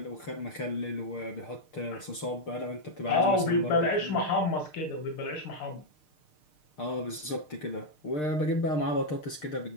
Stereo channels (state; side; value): late; right; 6.6 ms